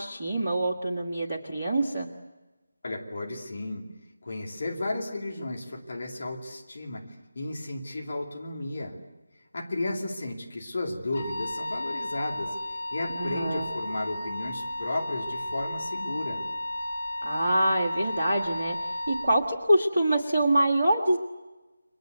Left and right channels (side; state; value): both; inverted; correlation -0.91